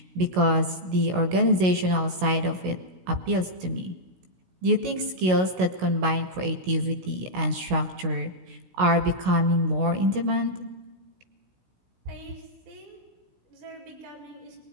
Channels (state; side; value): late; left; 16 ms